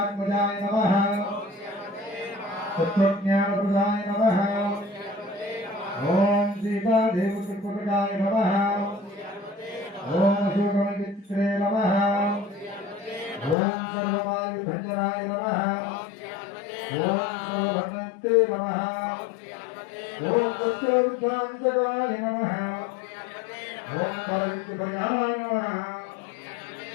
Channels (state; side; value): drops out; right; at 13.6 s